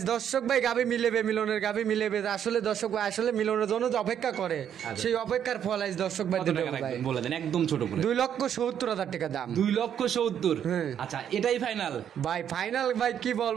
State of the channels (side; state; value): left; quieter; 9.2 dB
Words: দর্শক ভাই গাভি মিলেবে, মিলনের গাভি মিলেবে। আসলে দর্শক ভাই আসলে মিলনের জন্য যে অপেক্ষা করে সেই অপেক্ষার ফল আজ দর্শক ভাই কত দেবে টাকা ভাই। রাখবেন বলে দেন, একদম ছোট করে। 2,70,000 টাকা দাম। 2,70,000? হ্যাঁ। আচ্ছা, এটাই ফাইনাল ভাই ফাইনাল ভাই কি